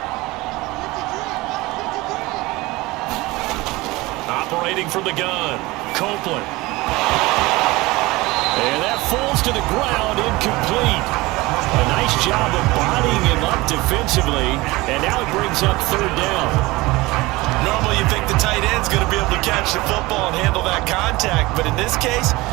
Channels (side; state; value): left; quieter; 21.2 dB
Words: Operating from the gun, Copeland. And that falls to the ground, incomplete. A nice job of bodying him up defensively, and now it brings up 3rd down. Normally you think the tight end's going to be able to catch the football and handle that contact, but in this case,